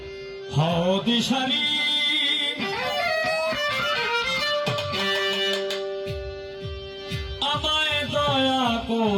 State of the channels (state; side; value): identical; both; correlation 1.00